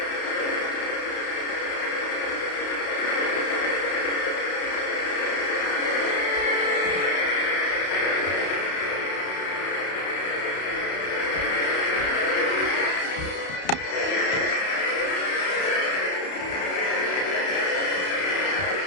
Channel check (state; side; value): late; right; 32 ms